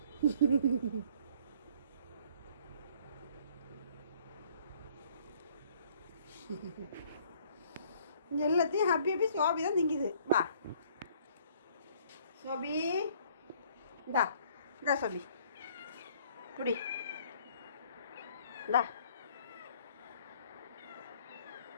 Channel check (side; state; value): both; inverted; correlation -0.58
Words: எல்லாத்தையும் ஹாப்பி ஹாப்பி சோபி தான் திங்குது. வா சோபி, இந்தா இந்தா சோபி குடி, இந்தா.